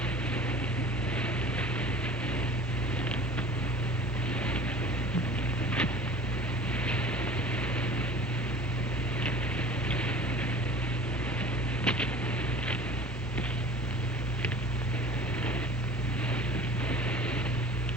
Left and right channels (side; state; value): both; normal; correlation 0.42